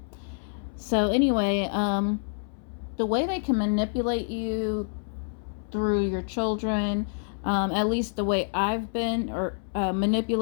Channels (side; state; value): right; silent; 60 dB below the other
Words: So anyway, the way they can manipulate you through your children, at least the way I've been